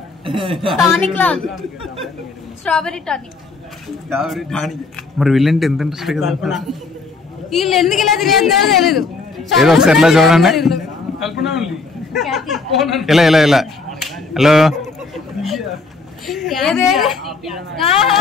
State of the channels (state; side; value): quieter; right; 4.0 dB